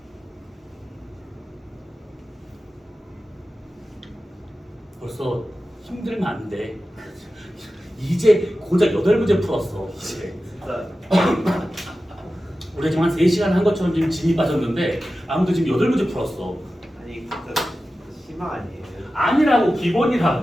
벌써 힘들면 안 돼. 이제 고작 8문제 풀었어. 이제. 진짜 우리가 지금 한 3시간 한 것처럼 지금 진이 빠졌는데 아무도 지금 8문제 풀었어. 아니 진짜 심화 아니에요? 아니라고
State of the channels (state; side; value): normal; both; correlation 0.94